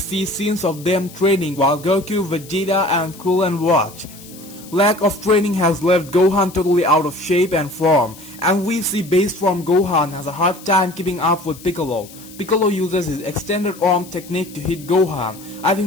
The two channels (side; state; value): left; noise; hiss, 19 dB below the sound